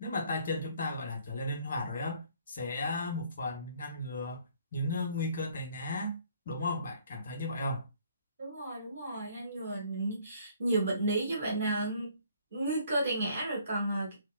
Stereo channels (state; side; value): inverted; both; correlation -0.60